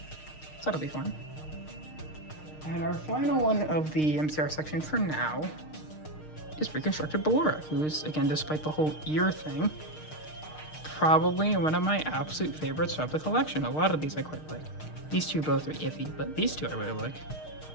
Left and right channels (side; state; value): right; late; 6.5 ms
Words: So that'll be fun. And our final one of the MCR section for now is Reconstructed Ballora, who's, again, despite the whole ear thing, probably one of my absolute favorites of the collection. A lot of these I quite like. These two both are iffy, but these two I really like.